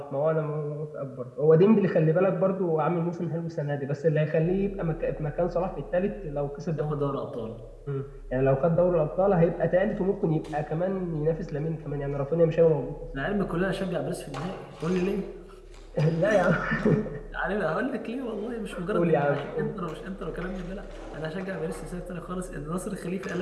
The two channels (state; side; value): identical; both; correlation 1.00